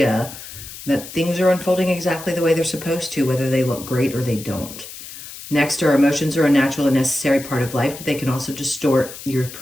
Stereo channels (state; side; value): noise; left; hiss, 13 dB below the sound